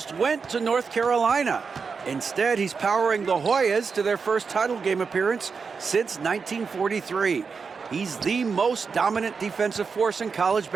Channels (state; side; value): quieter; left; 5.3 dB